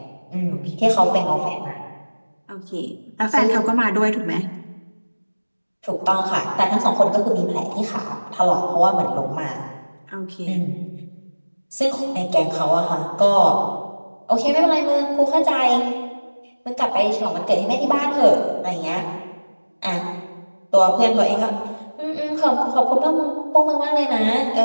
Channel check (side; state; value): both; inverted; correlation -1.00